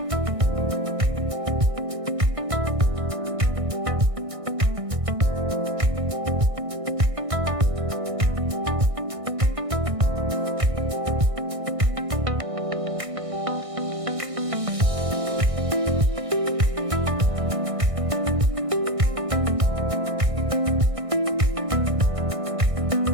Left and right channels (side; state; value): left; late; 1.6 ms